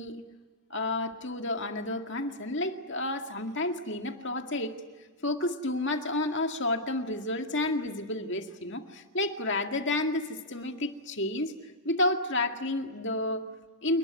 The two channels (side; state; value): both; normal; correlation -0.09